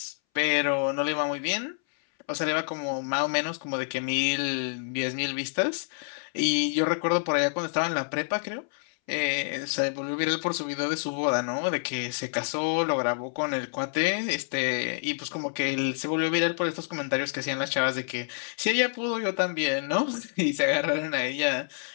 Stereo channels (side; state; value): right; silent; 59 dB below the other